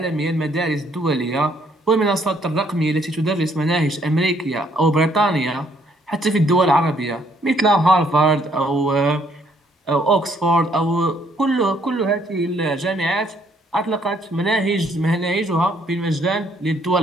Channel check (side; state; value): both; normal; correlation 0.67